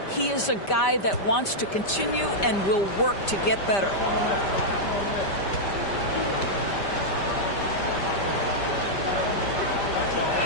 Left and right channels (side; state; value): right; late; 5.1 ms